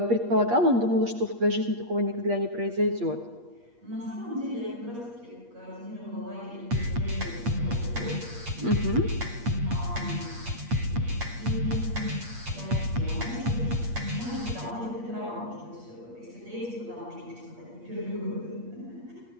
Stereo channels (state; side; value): late; left; 8.5 ms